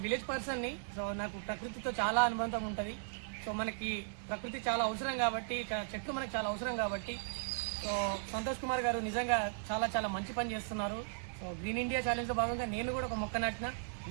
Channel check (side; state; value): left; silent; 53 dB below the other